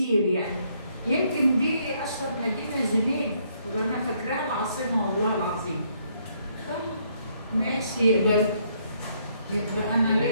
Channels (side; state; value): both; inverted; correlation -0.70